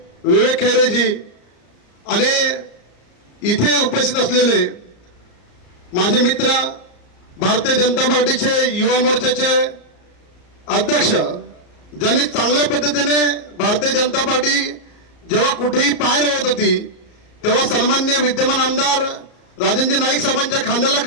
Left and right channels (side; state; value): right; late; 34 ms